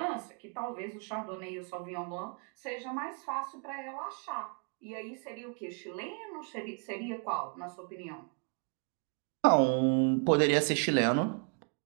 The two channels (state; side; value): quieter; left; 39.3 dB